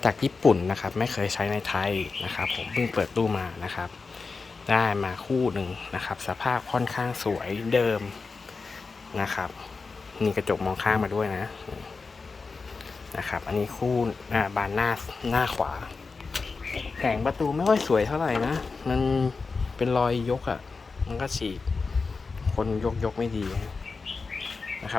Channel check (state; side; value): quieter; right; 4.4 dB